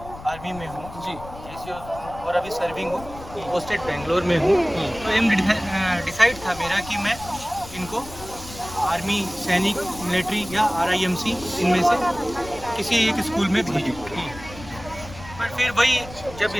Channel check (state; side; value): noise; left; rumble, 15 dB below the sound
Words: आर्मी में हूँ हैं? जी और अभी सर्विंग हूँ, पोस्टेड बेंगलोर में हूँ। तो एम डिसाइड था मेरा कि मैं इनको आर्मी, सैनिक, मिलिट्री या RIMC इनमें से किसी एक स्कूल में भेजूँ। पर फिर वही जब